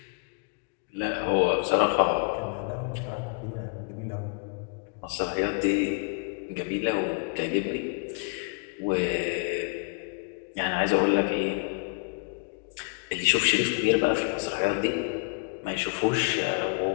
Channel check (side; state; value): right; quieter; 35.4 dB